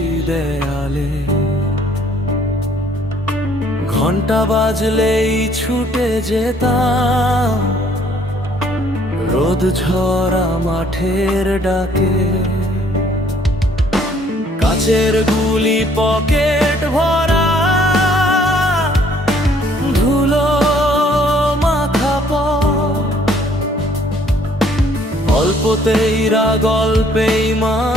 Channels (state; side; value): normal; both; correlation 0.61